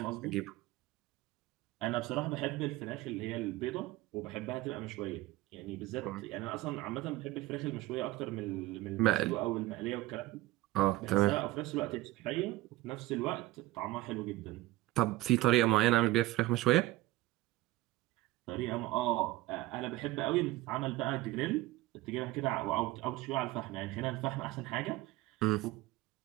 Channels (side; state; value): left; quieter; 17.8 dB